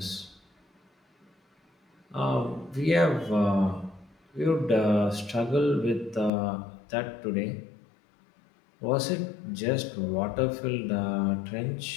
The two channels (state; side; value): drops out; right; at 6.3 s